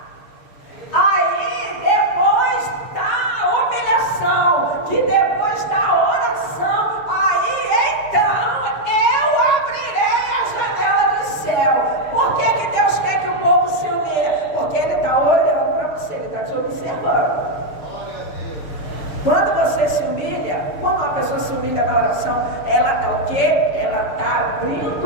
Aí depois da humilhação, que depois da oração, aí então eu abrirei a janela do céu. Por que Deus quer que o povo se humilhe? Porque Ele está olhando para você, Ele está te observando. Quando você se humilha, quando uma pessoa se humilha na oração, ela está o quê? Ela está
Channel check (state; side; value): late; right; 6.8 ms